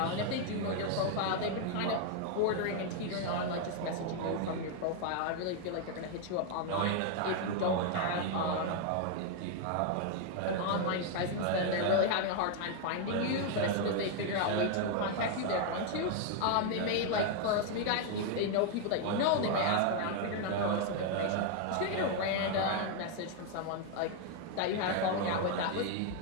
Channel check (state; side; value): different; both; correlation 0.00